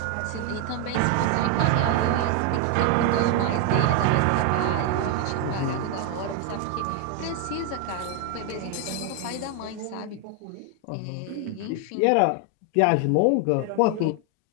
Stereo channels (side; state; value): both; different; correlation 0.01